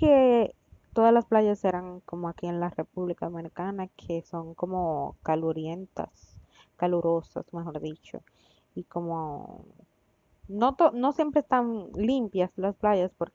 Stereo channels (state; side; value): identical; both; correlation 1.00